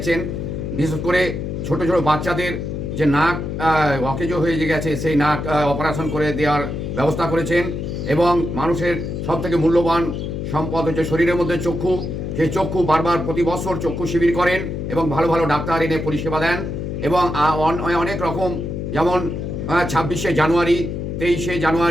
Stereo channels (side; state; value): left; noise; hum, 4 dB below the sound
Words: বিশেষ করে ছোট ছোট বাচ্চাদের যে নাক অকেজো হয়ে গেছে, সেই নাক অপারেশন করে দেওয়ার ব্যবস্থা করেছেন। এবং মানুষের সবথেকে মূল্যবান সম্পদ হচ্ছে শরীরের মধ্যে চক্ষু। সেই চক্ষু বারবার প্রতি বছর চক্ষু শিবির করেন এবং ভালো ভালো ডাক্তার এনে পরিষেবা দেন। এবং অনেক রকম, যেমন 26শে জানুয়ারি, 23শে